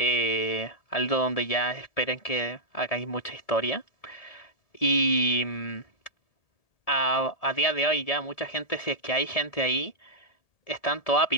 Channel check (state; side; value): late; right; 1.7 ms